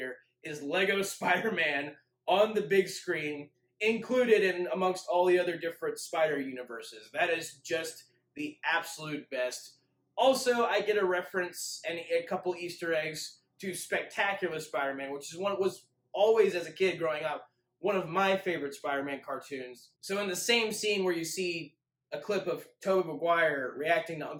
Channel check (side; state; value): both; identical; correlation 1.00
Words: is Lego Spider-Man on the big screen, included in amongst all the other different Spider universes. That is just the absolute best. Also, I get a reference and a couple Easter eggs to Spectacular Spider-Man, which is one was always, as a kid growing up, one of my favorite Spider-Man cartoons. So in the same scene where you see a clip of Tobey Maguire reacting to